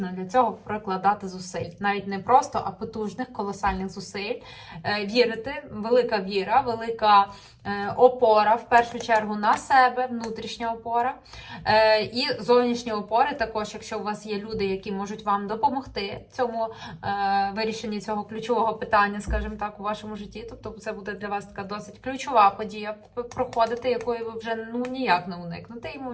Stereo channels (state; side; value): identical; both; correlation 1.00